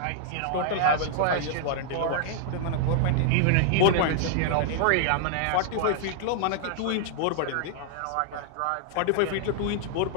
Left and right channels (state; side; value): different; both; correlation -0.01